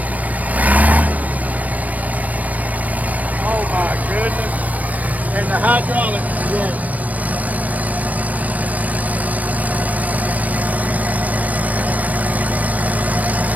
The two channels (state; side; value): late; left; 0.073 ms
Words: Oh my goodness. And the hydraulics work.